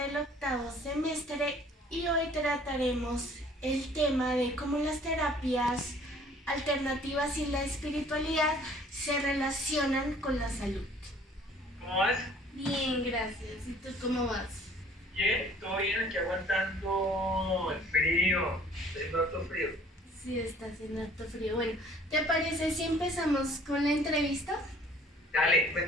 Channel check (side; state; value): both; normal; correlation 0.54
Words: octavo semestre y hoy trataremos el tema de cómo las terapias alternativas y la espiritualidad se relacionan con la salud. ¿Cómo vas? Bien, gracias. ¿Y tú cómo vas? Bien, todo bien, aquí aguantando el frío. Está haciendo harto frío. Sí, está haciendo harto frío. Bueno, ¿te parece si empezamos con la entrevista? Dale,